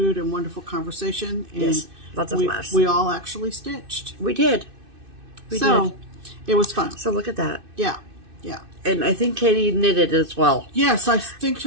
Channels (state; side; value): late; left; 2.6 ms